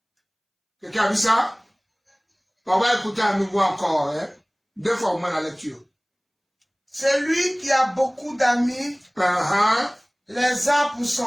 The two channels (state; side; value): identical; both; correlation 1.00